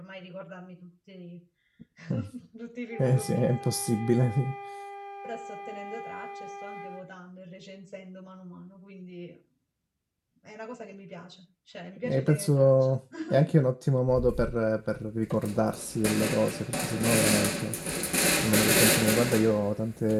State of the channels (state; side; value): identical; both; correlation 1.00